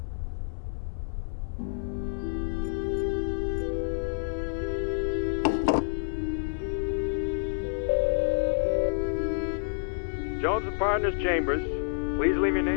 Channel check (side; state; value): right; silent; digital silence